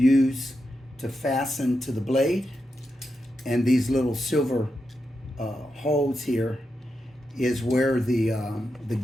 to fasten to the blade, and these little silver holes here is where the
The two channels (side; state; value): both; normal; correlation 0.87